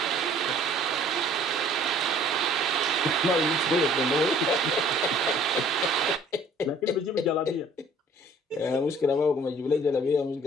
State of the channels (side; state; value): both; normal; correlation 0.55